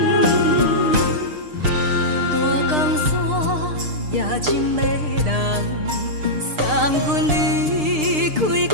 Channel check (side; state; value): left; late; 6.6 ms